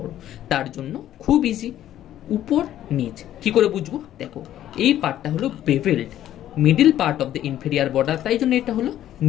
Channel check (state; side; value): quieter; right; 12.2 dB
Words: তার জন্য খুব ইজি। উপর নিচ কি করে বুঝবো? দেখো, এই পার্টটা হলো bevelled, middle part of the inferior border, তাই জন্য এটা হলো